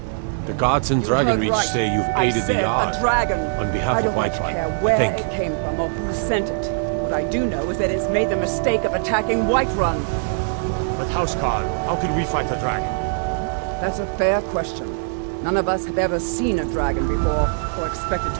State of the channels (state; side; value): silent; left; digital silence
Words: The gods and Dragon Heard Reach right. say you've I aided the said Yard. a dragon. On behalf I of don't much Whiterun, care where thank it you. came from or who sent it. What I do know is that it's made the mistake of attacking Whiterun. But Housecarl, how can we fight a dragon? That's a fair question. None of us have ever seen a dragon before, or expected